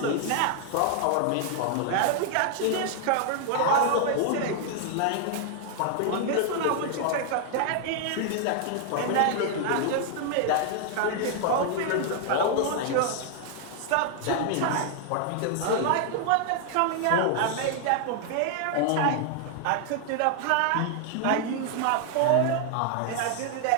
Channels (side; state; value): both; different; correlation 0.00